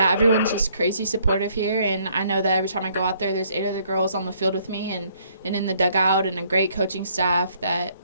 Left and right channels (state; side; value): inverted; both; correlation -0.65